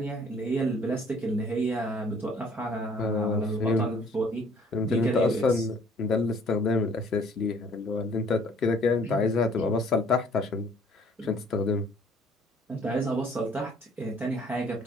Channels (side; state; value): both; normal; correlation 0.58